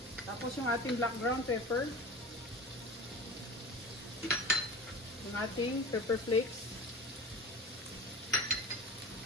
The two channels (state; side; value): normal; both; correlation 0.34